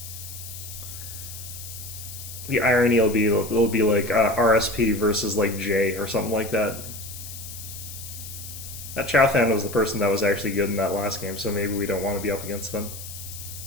The irony will be it'll be like RSP versus like J or something like that. That Chowthan was the person that was actually good in that last game, so maybe we don't want to be up against them.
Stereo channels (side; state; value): left; noise; hiss, 12 dB below the sound